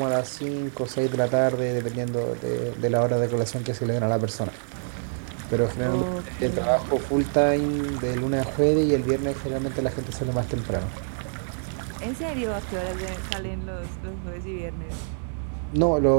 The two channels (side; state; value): left; silent; digital silence